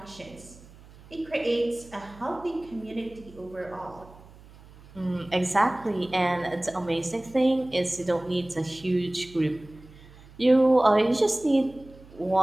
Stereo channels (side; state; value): right; noise; hum, 22 dB below the sound